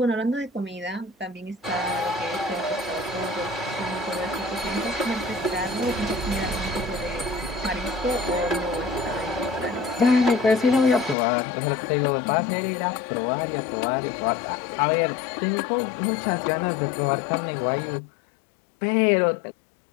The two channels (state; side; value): drops out; right; at 11.2 s